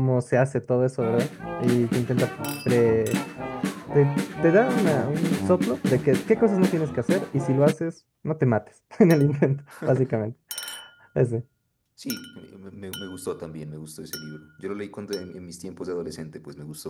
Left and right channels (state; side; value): identical; both; correlation 1.00